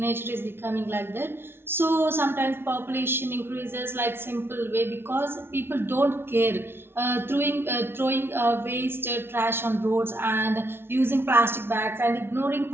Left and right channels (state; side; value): late; left; 0.11 ms